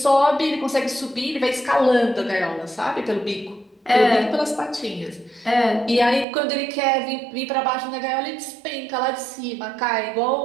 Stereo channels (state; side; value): drops out; left; at 6.2 s